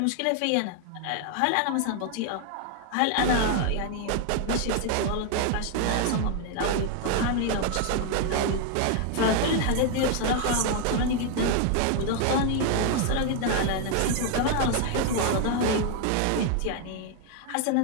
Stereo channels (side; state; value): both; different; correlation 0.01